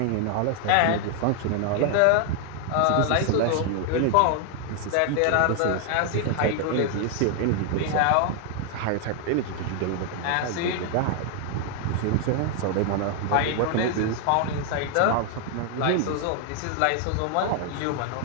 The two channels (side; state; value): both; different; correlation 0.00